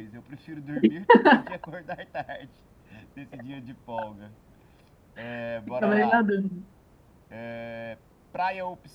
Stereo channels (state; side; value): identical; both; correlation 1.00